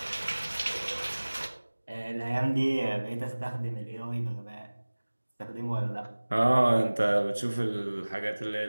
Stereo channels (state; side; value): inverted; both; correlation -1.00